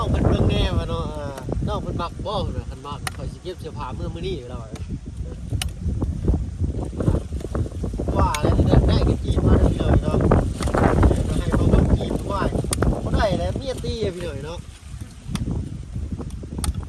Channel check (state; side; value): identical; both; correlation 1.00